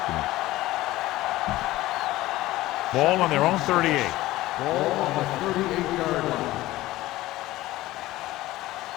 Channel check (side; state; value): right; quieter; 17.0 dB